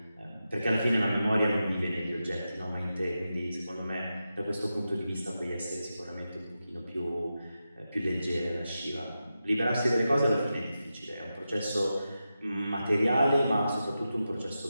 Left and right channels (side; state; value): both; inverted; correlation -0.90